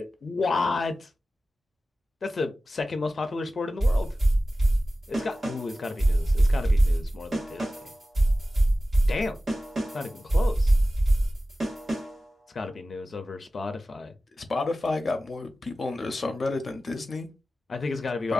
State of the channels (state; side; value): normal; both; correlation 0.95